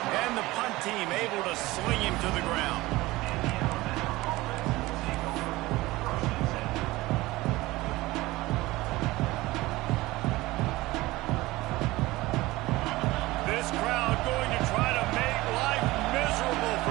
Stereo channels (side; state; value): left; quieter; 19.4 dB